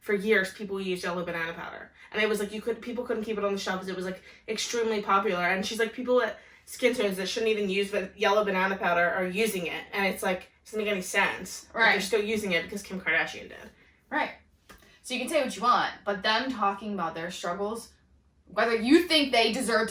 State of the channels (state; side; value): identical; both; correlation 1.00